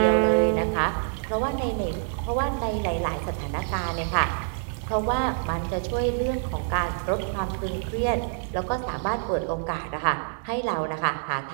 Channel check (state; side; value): silent; left; digital silence